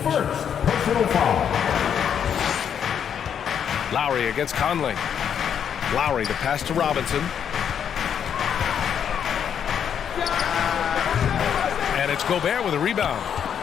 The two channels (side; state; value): right; quieter; 8.3 dB